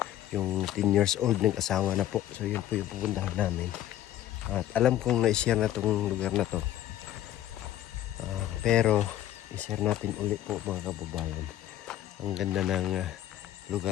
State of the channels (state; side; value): quieter; right; 12.6 dB